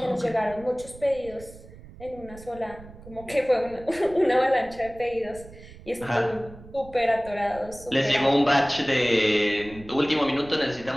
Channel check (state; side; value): noise; right; rumble, 18 dB below the sound